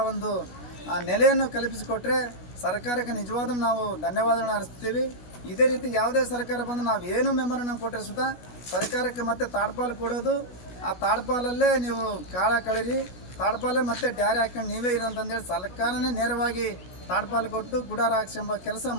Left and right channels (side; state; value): right; late; 16 ms